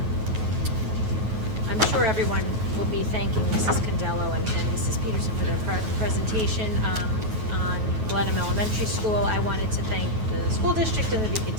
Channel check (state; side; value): late; left; 9.3 ms